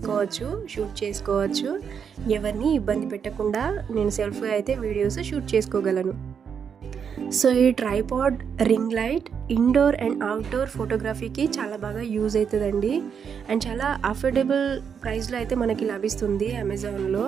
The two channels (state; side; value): quieter; left; 7.0 dB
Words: షూట్ చేసుకోవచ్చు. ఎవరిని ఇబ్బంది పెట్టకుండా నేను సెల్ఫ్గా అయితే వీడియోస్ షూట్ చేసుకోగలను. సో ఈ tripod ring light indoor and outdoor ఫోటోగ్రఫీకి చాలా బాగా యూజ్ అవుతుందండి. అండ్ చాలా అఫోర్డబుల్ ప్రైస్లో అయితే మనకి లభిస్తుంది అమెజాన్లో.